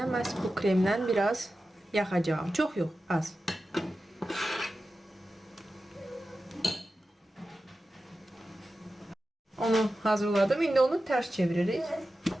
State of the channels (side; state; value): both; normal; correlation 0.93